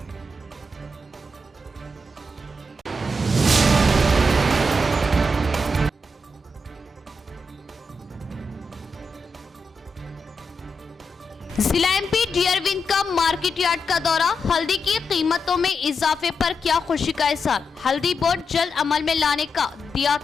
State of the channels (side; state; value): both; normal; correlation 0.85